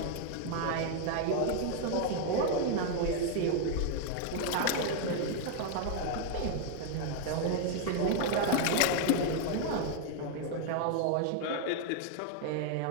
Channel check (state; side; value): different; both; correlation 0.00